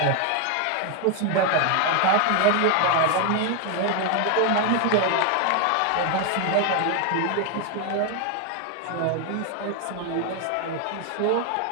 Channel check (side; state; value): both; different; correlation 0.01